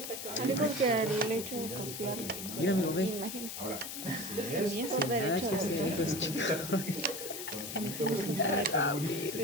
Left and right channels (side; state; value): left; noise; hiss, 7 dB below the sound